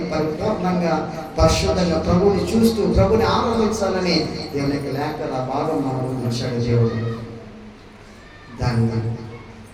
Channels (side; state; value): both; identical; correlation 1.00